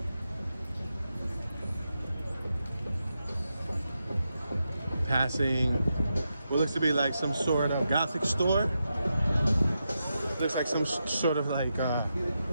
Passing what looks to be like some sort of Gothic store. Looks like some sort of like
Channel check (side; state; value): both; inverted; correlation -0.87